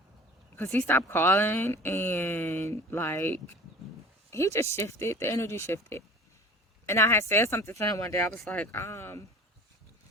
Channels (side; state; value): both; normal; correlation 0.42